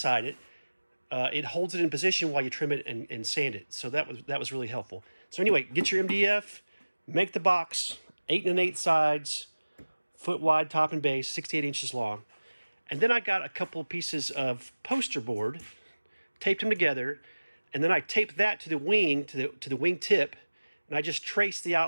it, it holds it in position while you trim it and sand it. So that was really helpful. So anyway, get your MDF, make the box, 8 1/8 sides, foot wide top and base, 68 inches long. And then I got a couple of pieces of poster board, taped them together, and then I taped that to the wing, to the wing tip, and I just traced the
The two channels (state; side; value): inverted; both; correlation -1.00